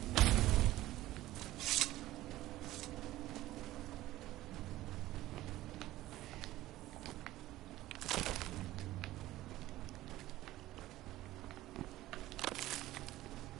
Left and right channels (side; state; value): left; quieter; 15.9 dB